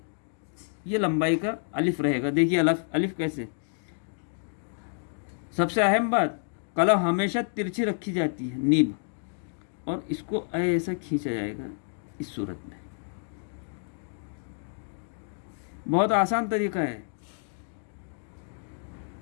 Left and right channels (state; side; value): silent; right; digital silence